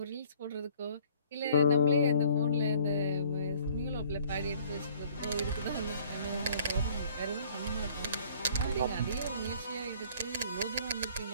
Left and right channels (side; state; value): both; inverted; correlation -0.56